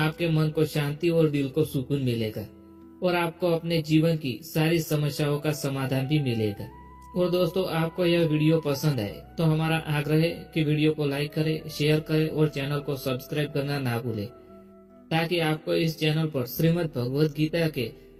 मन को शांति और दिल को सुकून मिलेगा और आपको अपने जीवन की सारी समस्याओं का समाधान भी मिलेगा। और दोस्तों आपको यह वीडियो पसंद आए तो हमारा आग्रह है कि वीडियो को लाइक करें, शेयर करें और चैनल को सब्सक्राइब करना ना भूलें, ताकि आपको इस चैनल पर श्रीमद् भगवद गीता के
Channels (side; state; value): both; identical; correlation 1.00